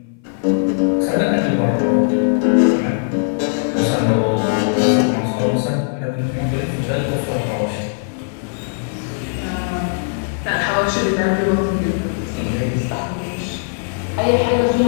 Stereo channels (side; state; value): right; silent; 57 dB below the other